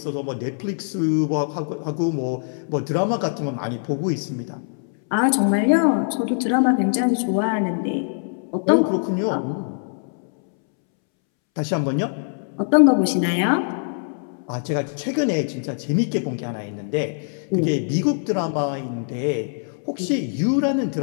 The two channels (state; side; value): silent; right; 64 dB below the other